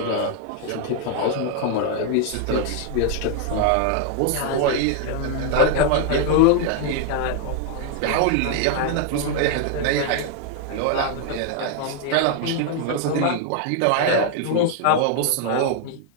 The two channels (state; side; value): different; both; correlation 0.00